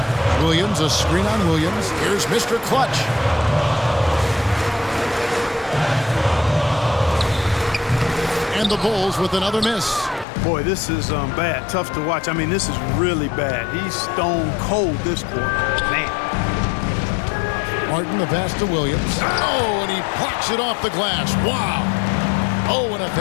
Williams, a screen on Williams. Here's Mr. Clutch. And the Bulls with another miss. Boy, this is bad. Tough to watch. I mean, this is really bad. He's stone cold this quarter. Man. Martin, the pass to Williams. Oh, and he plucks it off the glass. Wow. Oh, and a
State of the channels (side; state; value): right; drops out; at 10.2 s